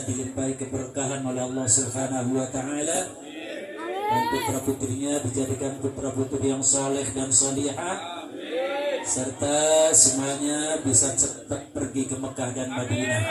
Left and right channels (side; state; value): both; identical; correlation 1.00